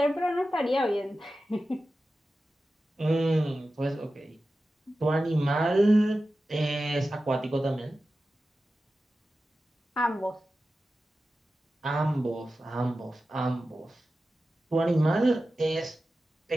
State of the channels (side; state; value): both; normal; correlation 0.93